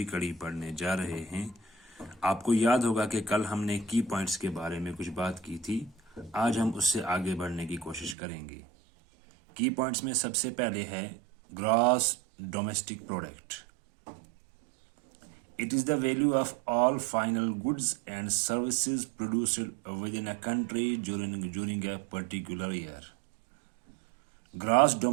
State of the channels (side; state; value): left; drops out; at 8.2 s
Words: کڑی پڑھنے جا رہے ہیں۔ آپ کو یاد ہوگا کہ کل ہم نے کی پوائنٹس کے بارے میں کچھ بات کی تھی۔ آج ہم اس سے آگے بڑھنے کی کوشش کریں گے۔ کی پوائنٹس میں سب سے پہلے ہے gross domestic product. It is the value of all final goods and services produced within a country during a particular year. Gross